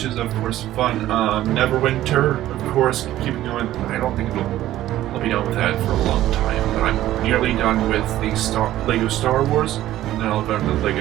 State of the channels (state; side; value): quieter; left; 14.0 dB